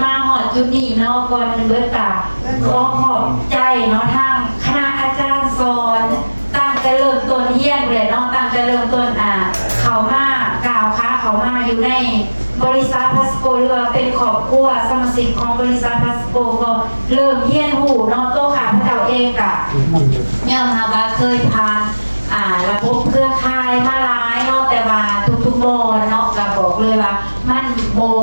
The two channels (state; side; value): inverted; both; correlation -1.00